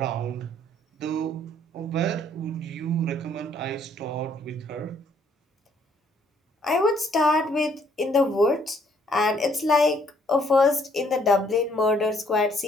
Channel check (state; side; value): normal; both; correlation 0.65